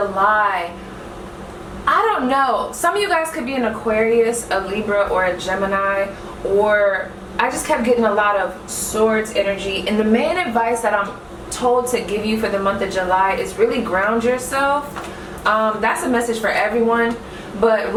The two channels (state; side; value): identical; both; correlation 1.00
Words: I don't know, some of you guys could be an Aquarius, a Libra, or a Gemini, or I just kept getting a lot of swords energy. And the main advice that I'm told to give you for the month of July is really ground yourself. That's a message for everyone, but